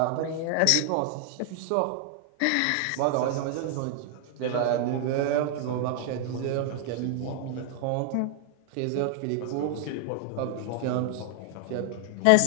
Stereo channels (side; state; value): both; different; correlation 0.00